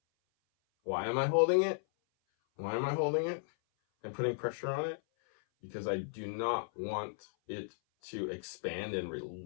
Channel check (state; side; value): silent; right; 54 dB below the other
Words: Why am I holding it? Why am I holding it and putting pressure on it? Because I do not want it to expand and